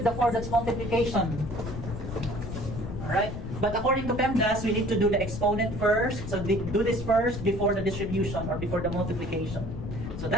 the 4, that's multiplication. Alright? But according to PEMDAS, we need to do the exponent first. So do this first before the distribution or before the multiplication. So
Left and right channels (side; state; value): left; noise; rumble, 8 dB below the sound